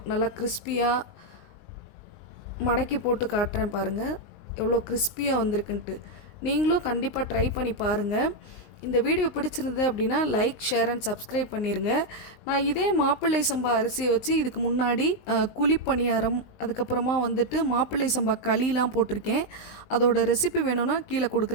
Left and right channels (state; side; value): late; right; 20 ms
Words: நல்லா கிறிஸ்பியாக மடக்கி போட்டு காட்டுறேன் பாருங்கள், எவ்வளோ கிறிஸ்பியாக வந்திருக்குன்ட்டு. நீங்களும் கண்டிப்பாக ட்ரை பண்ணி பாருங்கள். இந்த வீடியோ பிடிச்சிருந்தது அப்படின்னா லைக், ஷேர் அண்ட் சப்ஸ்கிரைப் பண்ணிடுங்க. நான் இதே மாப்பிள்ளை சம்பா அரிசியை வச்சு இதுக்கு முன்னாடி குழிப்பணியாரம், அதுக்கப்புறமா மாப்பிள்ளை சம்பா களிலாம் போட்டிருக்கேன். அதோட ரெசிபி வேணும்னா கீழே